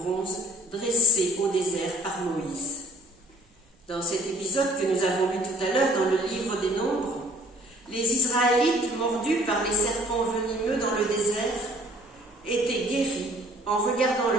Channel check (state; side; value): normal; both; correlation 0.55